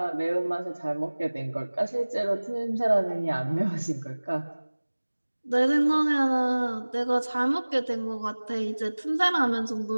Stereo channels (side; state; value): both; inverted; correlation -1.00